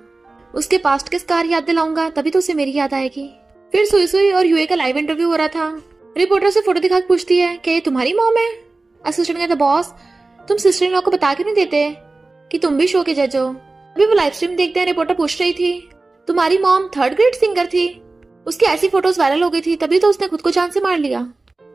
उसके पास्ट के स्कार याद दिलाऊंगा तभी तो उसे मेरी याद आएगी। फिर सुई और यूए का लाइव इंटरव्यू हो रहा था। रिपोर्टर से फोटो दिखा पूछती है क्या ये तुम्हारी मॉम है। असिस्टेंट कहता बॉस तुम सिस्टर इन लॉ को बता क्यों नहीं देते कि तुम भी शो के जज हो। अभी वो लाइव स्ट्रीम देखते हैं। रिपोर्टर पूछ रही थी तुम्हारी मॉम 3rd ग्रेड सिंगर थी, उसकी ऐसी फोटोज वायरल हो गई थी तभी तो उसने खुद को जान से मार लिया,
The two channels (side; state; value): left; quieter; 3.4 dB